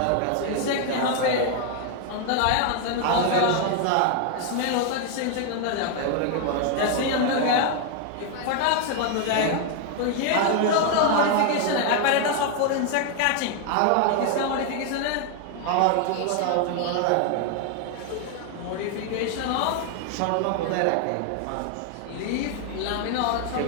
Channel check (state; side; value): different; both; correlation 0.01